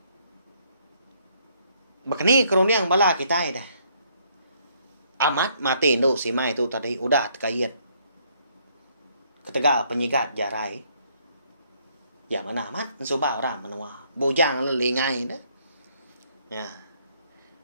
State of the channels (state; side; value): inverted; both; correlation -0.68